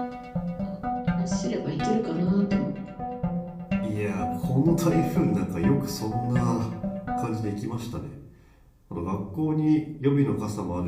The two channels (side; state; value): both; identical; correlation 1.00